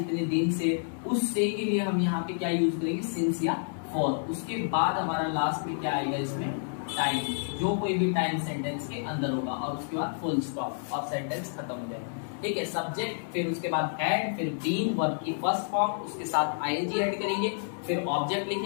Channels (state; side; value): silent; right; digital silence